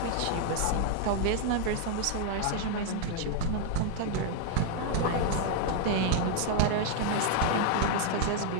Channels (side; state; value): both; different; correlation 0.00